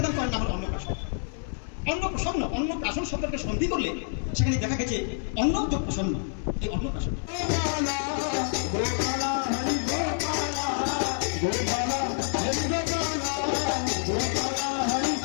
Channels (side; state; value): right; silent; digital silence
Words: করেন না, আমরা অন্নপ্রাশন। অন্নপ্রসন্ন, অন্নপ্রাশন শব্দকে সন্ধি করলে সেখানে দেখা গেছে অন্ন যোগ প্রসন্ন, এই অন্নপ্রাশন।